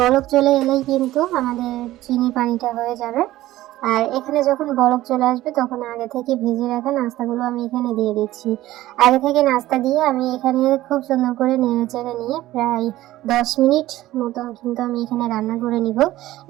চলে এলেই কিন্তু আমাদের চিনি পানিটা হয়ে যাবে। আর এখানে যখন বলক চলে আসবে তখন আগে থেকে ভেজে রাখা নাস্তাগুলো আমি এখানে দিয়ে দিচ্ছি। আগে থেকে নাস্তা দিয়ে আমি এখানে খুব সুন্দর করে নেড়ে চেড়ে নিয়ে প্রায় 10 মিনিট মতো কিন্তু আমি এখানে রান্না করে নিব।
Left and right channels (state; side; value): quieter; left; 15.7 dB